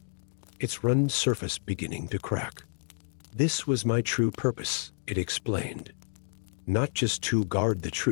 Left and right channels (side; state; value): right; silent; digital silence